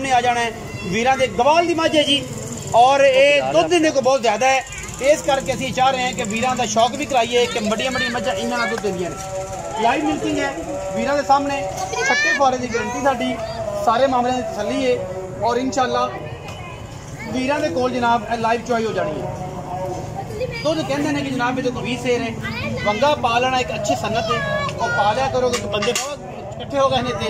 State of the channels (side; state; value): both; identical; correlation 1.00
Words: आ जाना है। वीरां दे गवाल दी मझ है जी, और ये दुध देने को बहुत ज़्यादा है, इस करके असीं चाह रहे हैं कि वीरां दा शौक भी कराइए कि बड़ियां बड़ियां मझां इन्हां नाल दुध देंदियां ने। लाइव मिल्किंग है वीरां दे सामने, छट्टे फुआरे की गारंटी साडी, सारे मामले की तसली है। और इंशाअल्लाह वीरां दे कोल जनाब लाइव चुआई हो जानी है। दुध कहते हैं कि जनाब ये 20 सेर है, वंगा पा लेना एक अच्छी सन्नत है, और पा लिया करो कि बंदे इकट्ठे हो गए